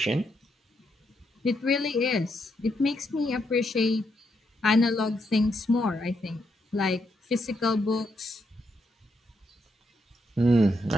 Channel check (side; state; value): both; normal; correlation 0.79